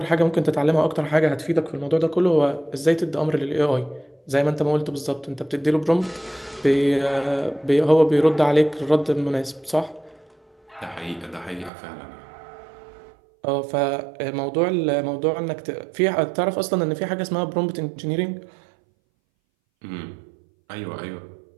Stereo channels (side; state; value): left; drops out; at 11.7 s